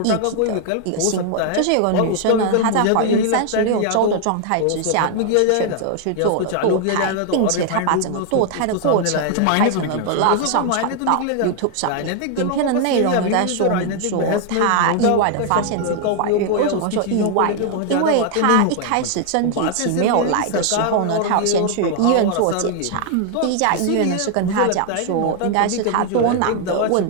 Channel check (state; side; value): different; both; correlation 0.00